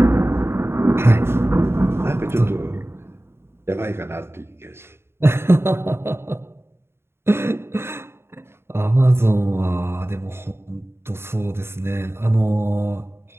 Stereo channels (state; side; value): late; left; 0.12 ms